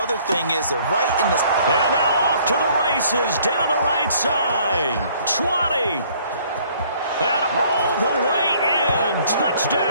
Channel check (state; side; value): inverted; both; correlation -0.59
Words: thing is they're right in the... And now off to the races, down the right side. 20. And all the way in.